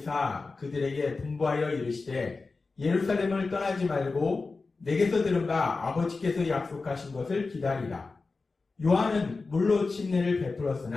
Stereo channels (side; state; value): right; quieter; 4.0 dB